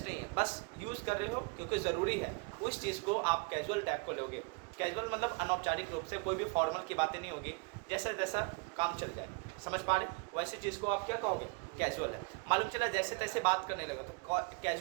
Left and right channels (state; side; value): quieter; left; 30.8 dB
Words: नहीं है, बस यूज़ कर रहे हो क्योंकि ज़रूरी है, उस चीज़ को आप कैजुअल टाइप को लोगे। कैजुअल मतलब अनौपचारिक रूप से, कोई भी फॉर्मल की बातें नहीं होगी, जैसा जैसा काम चल जाए। समझ पा रहे? वैसे चीज़ को आप क्या कहोगे? कैजुअल है। मालूम चला जैसे तैसे बात करने लगा तो